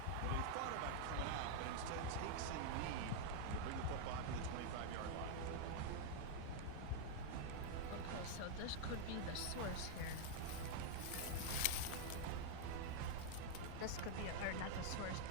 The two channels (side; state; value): both; different; correlation 0.00